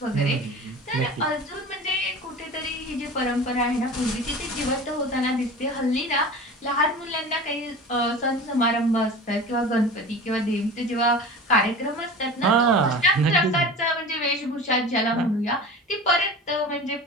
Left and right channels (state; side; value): normal; both; correlation 0.35